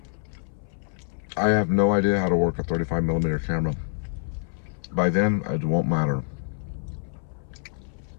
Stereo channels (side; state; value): right; silent; 61 dB below the other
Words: I have no idea how to work a 35mm camera. By then, it won't matter.